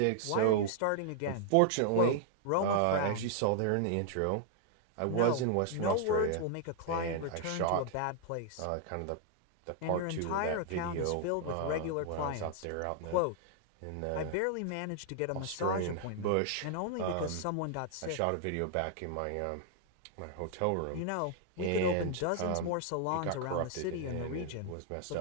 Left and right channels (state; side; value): different; both; correlation 0.00